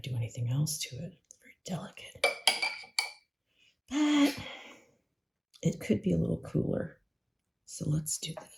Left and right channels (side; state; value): both; identical; correlation 1.00